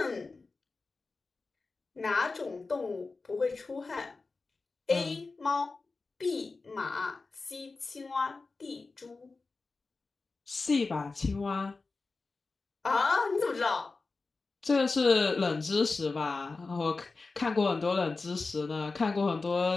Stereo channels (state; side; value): quieter; right; 3.9 dB